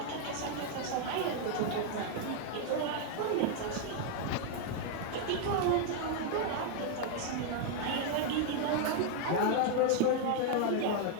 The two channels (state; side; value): different; both; correlation 0.00